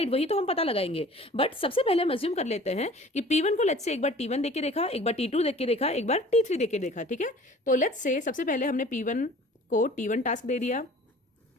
वही तो हम पता लगाएंगे। बट सबसे पहले हम अज्यूम कर लेते हैं कि P1 को लेट्स से एक बार T1 देख के देखा, एक बार T2 देख के देखा, एक बार T3 देख के देखा। ठीक है, तो लेट्स से सबसे पहले हमने P1 को T1 टास्क दे दिया।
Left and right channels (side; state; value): both; normal; correlation 0.47